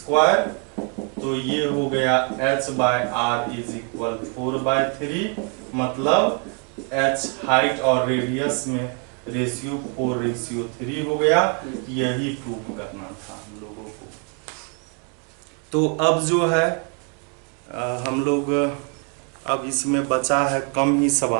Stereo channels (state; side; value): quieter; left; 35.8 dB